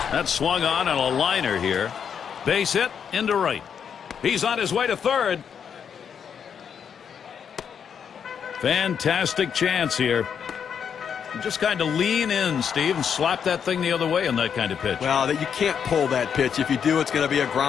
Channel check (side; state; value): right; quieter; 7.5 dB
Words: swung on a liner here. Base hit into right. He's on his way to third. Fantastic chance here. Just kind of lean in, Steve, and slap that thing the other way on that kind of pitch. Well, you can't pull that pitch. If you do, it's going to be a